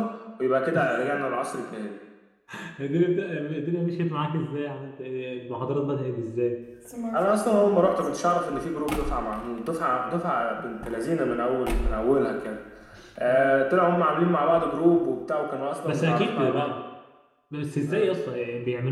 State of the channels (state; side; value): identical; both; correlation 1.00